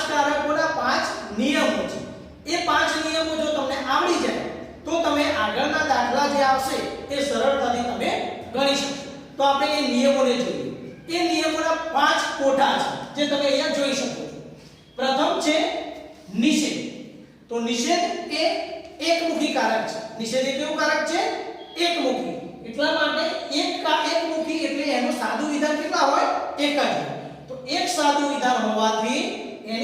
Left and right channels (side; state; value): both; identical; correlation 1.00